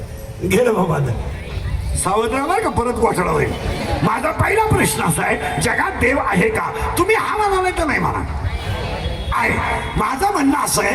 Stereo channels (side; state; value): both; identical; correlation 1.00